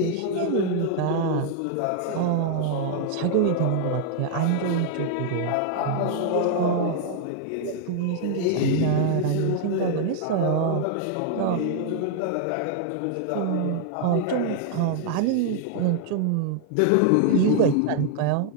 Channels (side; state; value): both; different; correlation 0.00